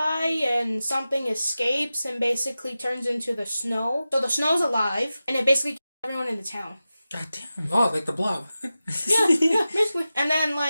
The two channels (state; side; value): inverted; both; correlation -0.94